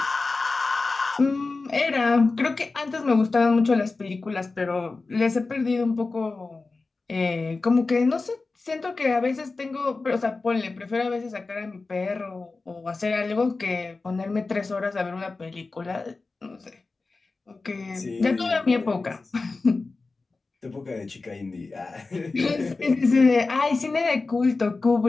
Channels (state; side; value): quieter; right; 3.8 dB